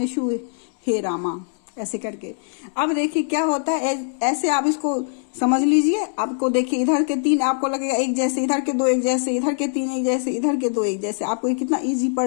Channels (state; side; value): silent; right; 64 dB below the other